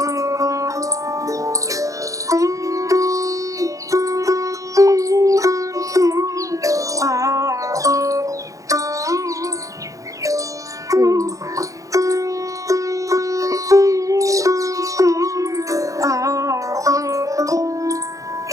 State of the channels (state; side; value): late; left; 0.16 ms